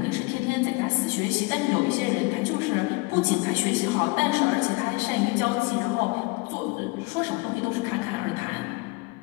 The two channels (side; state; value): right; quieter; 25.5 dB